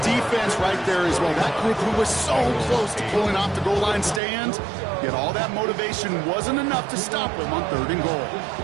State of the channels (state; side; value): drops out; left; at 4.2 s